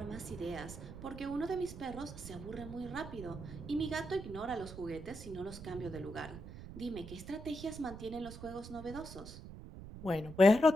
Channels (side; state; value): right; noise; rumble, 12 dB below the sound